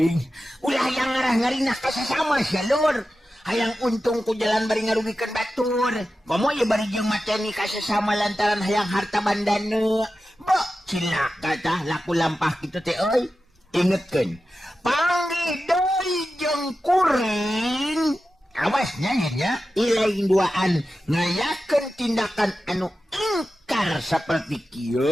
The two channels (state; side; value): normal; both; correlation 0.93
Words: Ulah yang ngarah ngarinah ka sasama sia lur. Hayang untung ku jalan bari ngarugikeun batur. Komo ye bari jeung mateni ka sasama lantaran hayang harta bandana. Bo, cilaka tah laku lampah kitu teh euy. Ingetkeun, panggih deui jeung kuring. Awas nya ilain duaan ngayakeun tindakan anu ingkar saperti